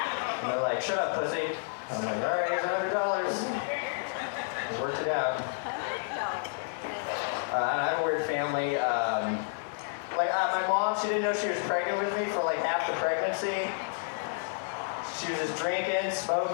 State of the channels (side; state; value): right; silent; digital silence